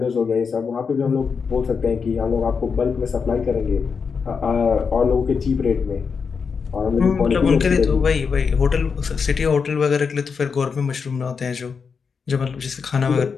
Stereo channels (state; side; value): quieter; right; 5.7 dB